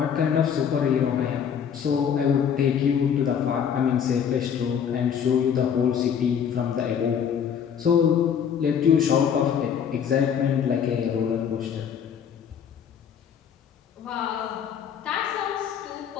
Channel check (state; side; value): quieter; right; 7.9 dB